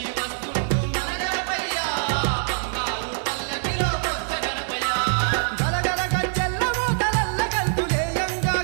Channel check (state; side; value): silent; left; 63 dB below the other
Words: వస్తుండు మన గణపయ్య బంగారు పల్లకిలో బొజ్జ గణపయ్య గలగల గజ్జెల్ల మోతలల్ల గంతులేయంగా